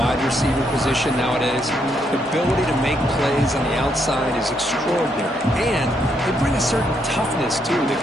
receiver position nowadays. The ability to make plays on the outside is extraordinary. And they bring a certain toughness, too, that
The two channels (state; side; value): normal; both; correlation 0.75